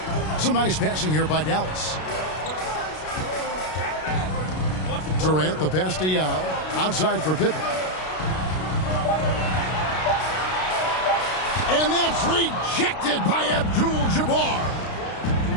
Some nice passing here by Dallas. Durant the pass to Yao. Outside for Pippen. And that's rejected by Abdul-Jabbar.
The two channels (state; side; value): late; right; 32 ms